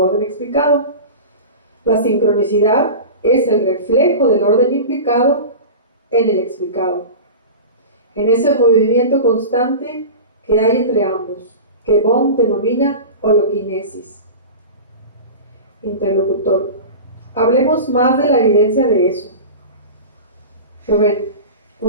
explicado. La sincronicidad es el reflejo del orden implicado en el explicado, en ese movimiento constante que hay entre ambos, que Bohm denomina holoquinesis. Interlocutor, hablemos más de la evidencia de eso. Rubén,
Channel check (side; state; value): both; inverted; correlation -0.31